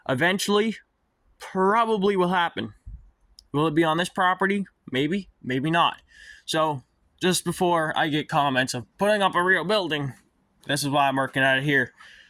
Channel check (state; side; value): identical; both; correlation 1.00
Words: Eventually, probably will happen. Will it be on this property? Maybe, maybe not. So, just before I get comments of putting up a real building, this is why I'm working at it here.